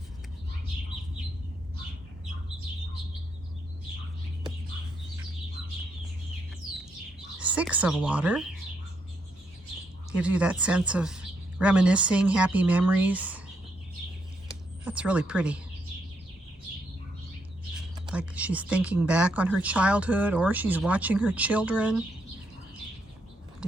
Six of Water. Gives you that sense of reminiscing, happy memories. That's really pretty. Like she's thinking back on her childhood, or she's watching her children,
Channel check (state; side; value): normal; both; correlation 0.77